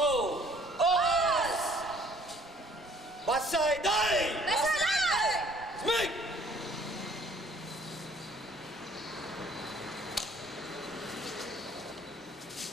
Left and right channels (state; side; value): normal; both; correlation 0.58